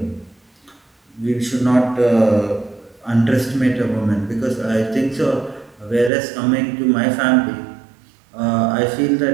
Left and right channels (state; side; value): drops out; left; at 6.1 s